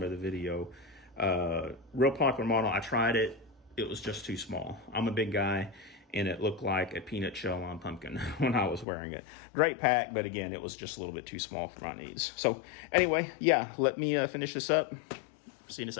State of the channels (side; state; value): right; drops out; at 8.8 s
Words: of the video. Real popular model. I tried it. It was just too small. I'm a big guy, and it looked like a peanut shell on pumpkin when I was wearing it. Great pack, but again, it was just a little bit too small for my needs. So anyway, yeah, let me finish this up. See you in a